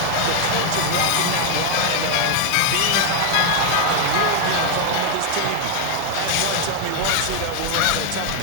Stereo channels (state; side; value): different; both; correlation 0.01